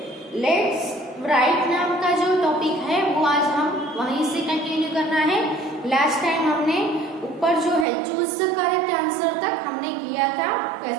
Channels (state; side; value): drops out; left; at 7.9 s